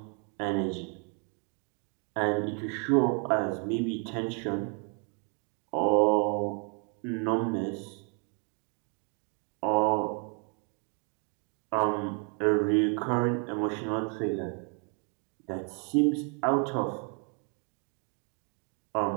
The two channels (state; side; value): quieter; left; 38.8 dB